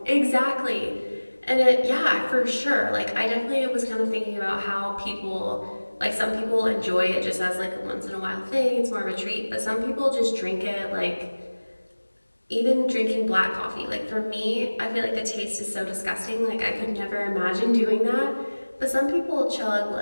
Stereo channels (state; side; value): inverted; both; correlation -1.00